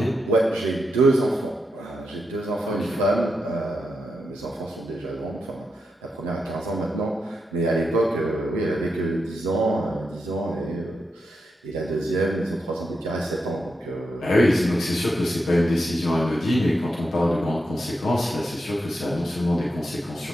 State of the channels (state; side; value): normal; both; correlation 0.85